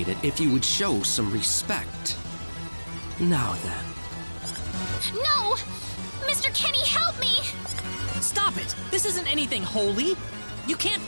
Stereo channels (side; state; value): both; inverted; correlation -1.00